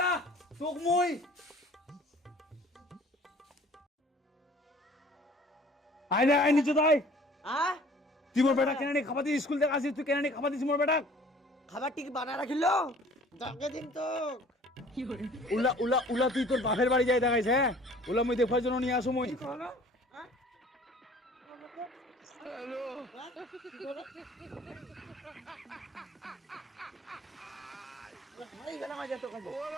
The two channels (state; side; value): normal; both; correlation 0.51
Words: তোক মুই আয় না আয় নিচে তাই हां তুই মোর বেটা কেন নি খাবার দি স্কুল থেকে আসিস তুই কেন নি খাবার দিস মোর বেটা খাবার ঠিক বানা রাখিলো ডাকে দিন তো উলা উলা উলা তুই তোর বাপের বাড়ি যাই দেখাইছ হ্যাঁ উলা মুই দেখার জন্য নিয়ে আসো মুই ভাই গেলাম আজ তো কাজে